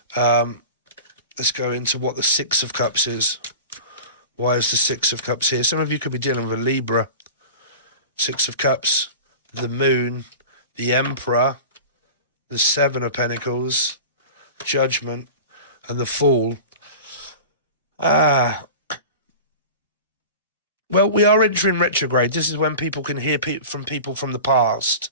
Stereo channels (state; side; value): inverted; both; correlation -0.35